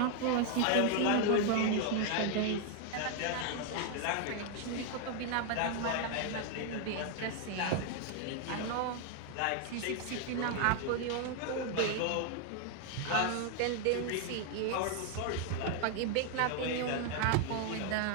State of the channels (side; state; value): both; different; correlation 0.00